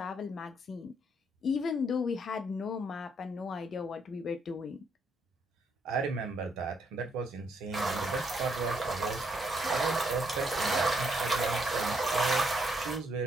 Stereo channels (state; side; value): normal; both; correlation 0.74